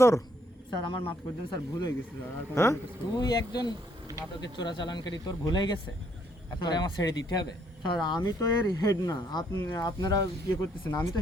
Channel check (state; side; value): normal; both; correlation 0.69